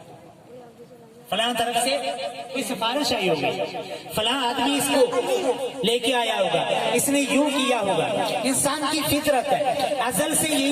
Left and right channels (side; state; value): both; identical; correlation 1.00